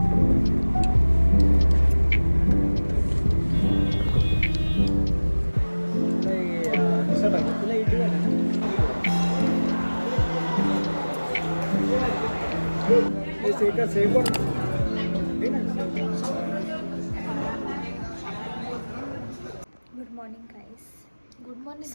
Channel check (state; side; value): inverted; both; correlation -1.00